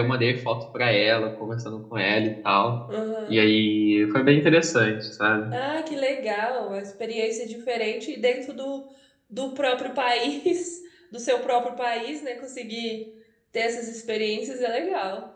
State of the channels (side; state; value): both; identical; correlation 1.00